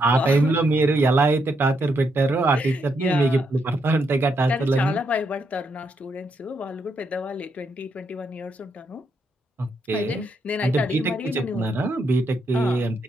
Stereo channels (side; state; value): both; normal; correlation 0.78